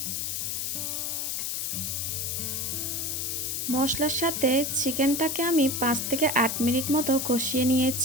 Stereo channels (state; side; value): noise; left; hiss, 1 dB below the sound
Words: মশলার সাথে চিকেনটাকে আমি 5 থেকে 8 মিনিট মতো কষিয়ে